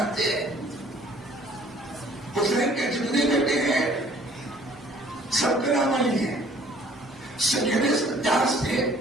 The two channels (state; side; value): normal; both; correlation 0.56